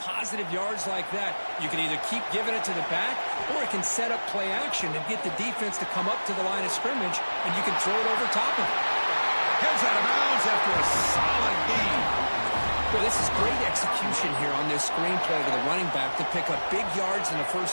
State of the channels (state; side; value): inverted; both; correlation -1.00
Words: positive yards like that. You can either keep giving it to the back, or it can set up play action and get the defense to come up to the line of scrimmage, and you can throw it over top of it. Heads out of bounds after a solid gain. Well, this is great execution here on this screenplay to the running back to pick up big yards in the